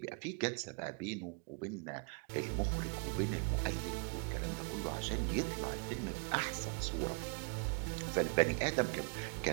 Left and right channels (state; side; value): quieter; left; 33.3 dB